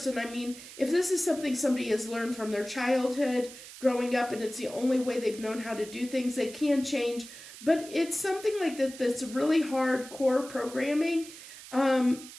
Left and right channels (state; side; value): noise; right; hiss, 15 dB below the sound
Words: if this is something somebody has learned from their childhood, growing up, and it's the only way they've known how to do things, they can change. But it's something like that's really hardcore programming.